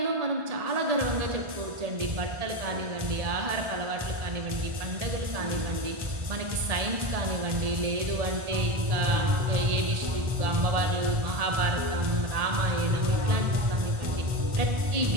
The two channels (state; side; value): late; left; 1.4 ms